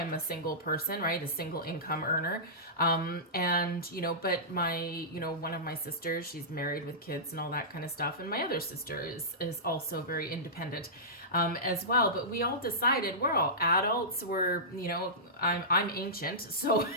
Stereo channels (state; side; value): normal; both; correlation -0.17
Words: a single person, right? A single income earner. And, you know, but one of my sisters, she's married with kids and all that kind of stuff. And my other sister is also very independent, as well. But we all decided, we're all adults. We're, you know, I'm ancient. So,